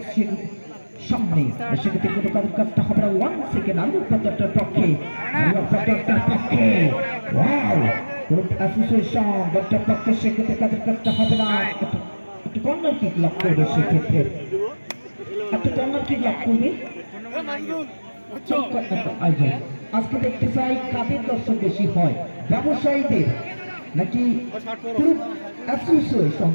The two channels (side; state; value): both; inverted; correlation -1.00